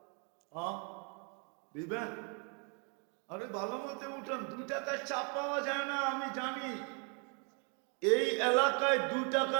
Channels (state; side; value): quieter; left; 36.9 dB